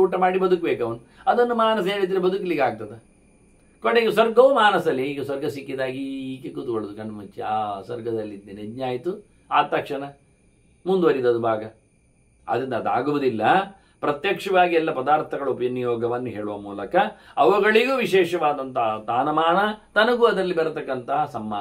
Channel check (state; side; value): identical; both; correlation 1.00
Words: ಊಟ ಮಾಡಿ ಬದುಕಬೇಕು ಅವನು. ಅದನ್ನು ಮಾನಸ ಹೇಳಿದ್ರೆ ಬದುಕಲಿಕ್ಕೆ ಆಗ್ತದೆ. ಕೊನೆಗೆ ಸ್ವರ್ಗವೂ ಮಾನಸಲ್ಲಿ. ಈಗ ಸ್ವರ್ಗ ಸಿಕ್ಕಿದಾಗಿ ಹೀಗೆ ಕೂತ್ಕೊಳ್ಳೋದು ಕಣ್ಣು ಮುಚ್ಚಿ, ಆ ಸ್ವರ್ಗದಲ್ಲಿದ್ದೇನೆ, ಯಜ್ಞ ಆಯಿತು, ಆದ ತಕ್ಷಣ ಮುಂದುವರಿದದು ಭಾಗ. ಅದರಿಂದ ಅದಾಗುವುದಿಲ್ಲ. ಪ್ರತ್ಯಕ್ಷವಾಗಿ ಎಲ್ಲ ಪದಾರ್ಥಗಳ ವಿನಿಯೋಗವನ್ನು ಹೇಳುವ ಮೂಲಕ ಅವುಗಳಿಗೂ ವಿಶೇಷವಾದಂತಹ ತಾನಮಾನ, ತನಗೂ ಅದರಲ್ಲಿ ಬರತಕ್ಕಂತಹ